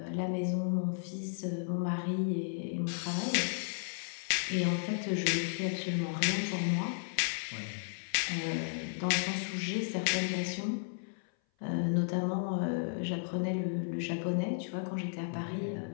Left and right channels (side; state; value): right; silent; 55 dB below the other